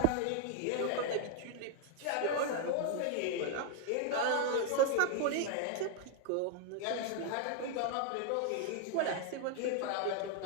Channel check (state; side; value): different; both; correlation 0.00